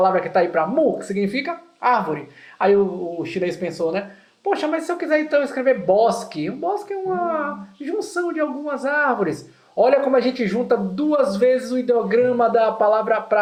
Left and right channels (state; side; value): identical; both; correlation 1.00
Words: que está aí para mu, que significa árvore. Aí o chinês pensou, né? Poxa, mas se eu quiser então escrever bosque, um bosque é uma junção de algumas árvores. Olha como a gente junta 2 vezes o ideograma da palavra